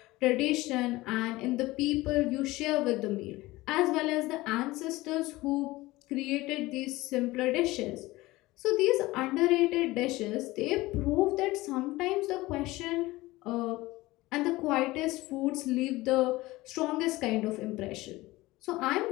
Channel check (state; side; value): quieter; right; 19.4 dB